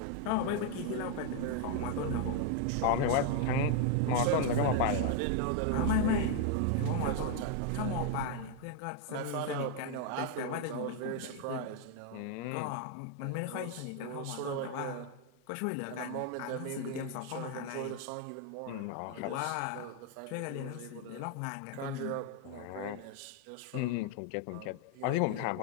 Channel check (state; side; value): different; both; correlation 0.00